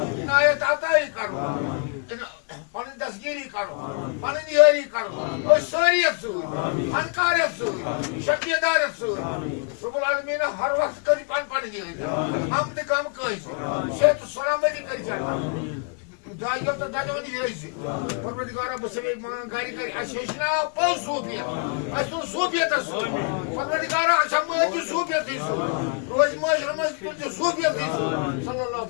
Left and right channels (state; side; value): quieter; right; 38.8 dB